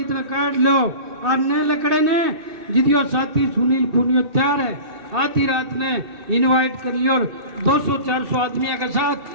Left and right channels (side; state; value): left; late; 2.6 ms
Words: काट लो, आप नए लकड़े ने जिदियो साथी सुनील पुनिया तैयार है, आधी रात ने इनवाइट कर लियो, और 200-400 आदमियों के साथ